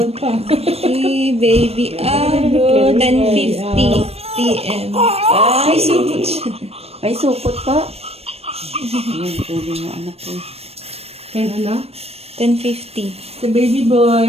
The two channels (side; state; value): left; late; 0.29 ms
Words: pa. Si baby Aro, 10:50 p.m. Ay, supot siya. Ay, supot pa. Ayan, tubig na anak ko. Kaya ano? 10:50. Si baby